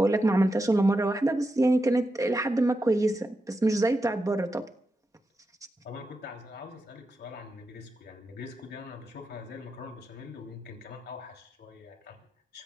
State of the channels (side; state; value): both; normal; correlation 0.88